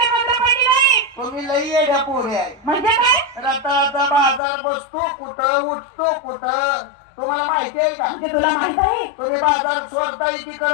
बंद पडली नाही. तुम्ही लई येड्या पोरे आहे. म्हणजे काय? रताळाचा बाजार बसतो कुठं, उठतो कुठं, तुम्हाला माहिती आहे का. म्हणजे तुला माहित आहे? तुम्ही बाजार सोडता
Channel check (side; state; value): right; drops out; at 4.4 s